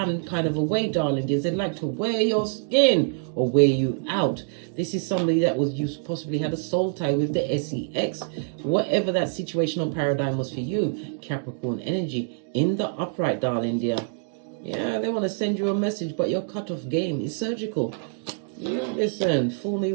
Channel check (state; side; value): silent; left; digital silence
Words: kind of a way, darling dears. They'd like to wear your skin or wear you out. This is somebody that you possibly had a soul tie with the SEX. Whatever that situational paradigm was for you, Capricorn energy in the upright, darling dear. Yeah, they want to send you a message, but your cutoff game is surgical. You listen, fool me